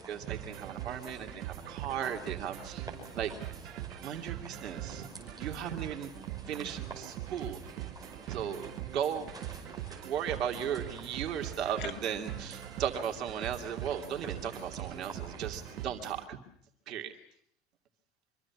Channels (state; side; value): quieter; left; 8.5 dB